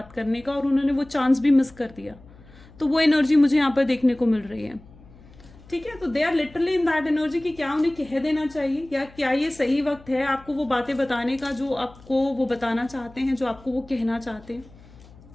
करने का, और उन्होंने वो चांस भी मिस कर दिया। तो वो एनर्जी मुझे यहाँ पर देखने को मिल रही है, ठीक है। तो they are literally in that energy कि क्या उन्हें कह देना चाहिए, या क्या ये सही वक्त है आपको वो बातें बताने का जो आपको वो बताना चाहते हैं, जो आपको वो कहना चाहते हैं।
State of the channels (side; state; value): left; noise; hum, 23 dB below the sound